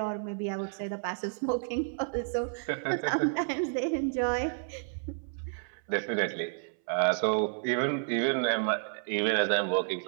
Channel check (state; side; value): silent; left; 57 dB below the other